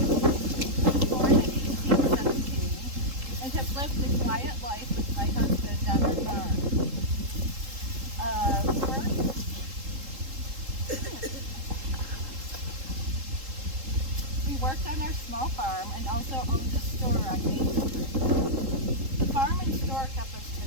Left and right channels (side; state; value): left; late; 3.8 ms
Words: Born in 1817, and have lived a quiet life with my husband on our farm. We worked on our small farm and also owned a store on Main Street. The farm and store kept us